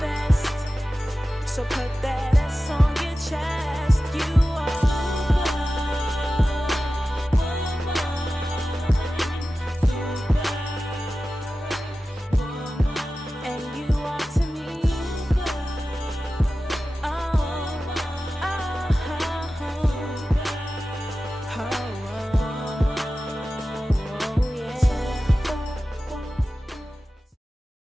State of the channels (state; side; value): normal; both; correlation 0.94